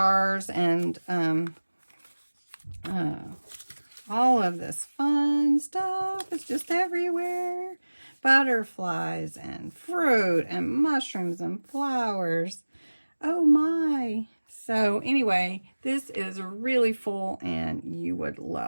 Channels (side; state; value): both; inverted; correlation -1.00